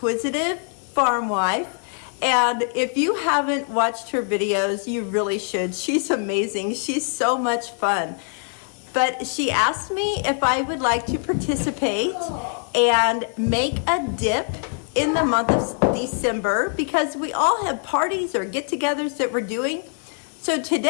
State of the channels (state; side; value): silent; right; 56 dB below the other